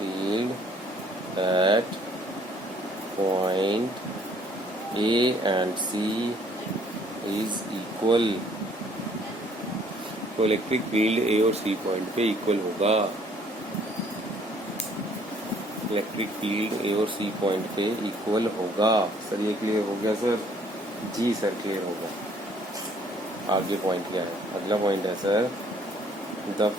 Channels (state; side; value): normal; both; correlation 0.61